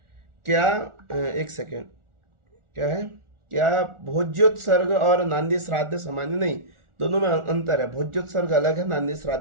क्या एक सेकेंड, क्या है, क्या भोज्योत्सर्ग और नांदी श्राद्ध सामान्य नहीं, दोनों में अंतर है। भोज्योत्सर्ग अलग है, नांदी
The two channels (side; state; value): left; late; 1.4 ms